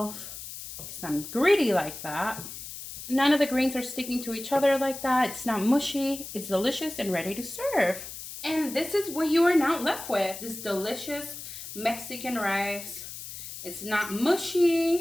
because I'm greedy like that. None of the grains are sticking to each other like that. It's not mushy. It's delicious and ready to serve. And this is what you are now left with. This delicious Mexican rice. It's not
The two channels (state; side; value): noise; left; hiss, 11 dB below the sound